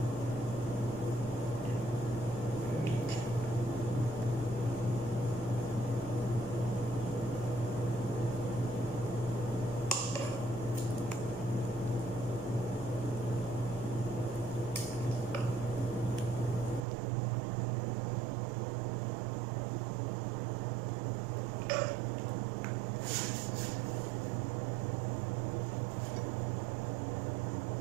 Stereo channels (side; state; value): left; drops out; at 16.9 s